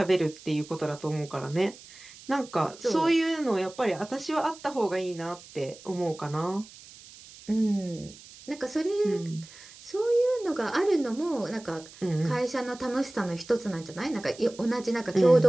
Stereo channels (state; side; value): noise; right; hiss, 19 dB below the sound